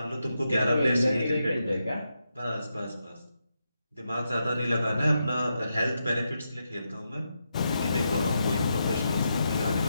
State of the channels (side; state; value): both; inverted; correlation -0.85